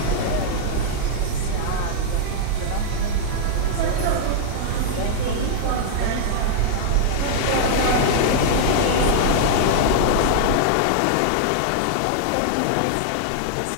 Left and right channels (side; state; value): both; different; correlation -0.01